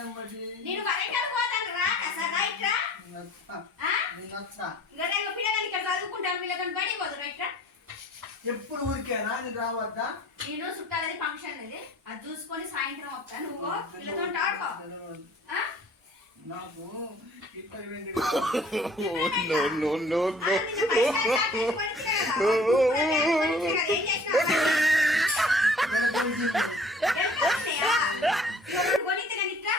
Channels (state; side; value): normal; both; correlation 0.52